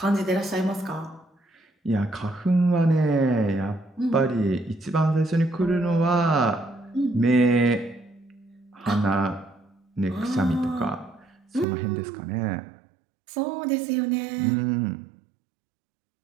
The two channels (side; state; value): left; drops out; at 11.7 s